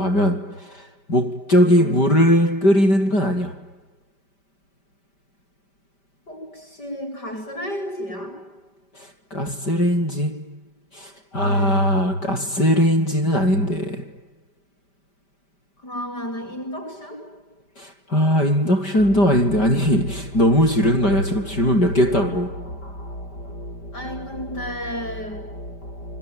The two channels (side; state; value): right; late; 5.1 ms